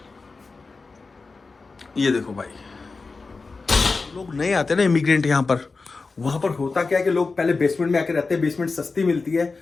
ये देखो भाई, लोग नए आते हैं ना इमिग्रेंट यहाँ पर, वहां पर होता क्या है कि लोग पहले बेसमेंट में आके रहते हैं। बेसमेंट सस्ती मिलती है,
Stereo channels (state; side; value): quieter; right; 4.1 dB